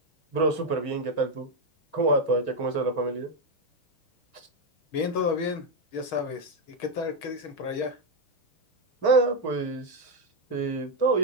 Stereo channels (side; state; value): right; late; 6.3 ms